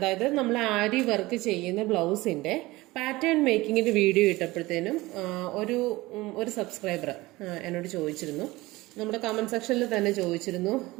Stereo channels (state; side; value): quieter; left; 20.1 dB